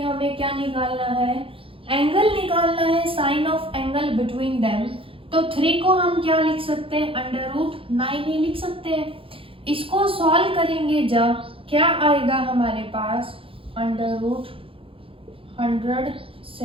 क्या निकालना है, एंगल निकालना है, sine of angle between them. तो 3 को हम क्या लिख सकते हैं √9 ही लिख सकते हैं। इसको सॉल्व करेंगे जब क्या आएगा हमारे पास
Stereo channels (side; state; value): left; late; 0.26 ms